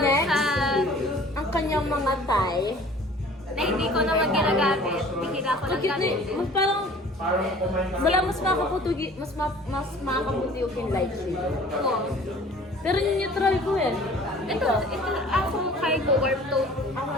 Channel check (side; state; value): both; normal; correlation 0.48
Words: Next, sa... ang kanyang mga tie. Na hindi ko naman ginagamit. Bihira ko lang gamit. Mas parang, wala mas makakaputugi, mas makakaputi yung light shade. Oo. Pero yung neutral ko eh. Ito ako cargo warm tone.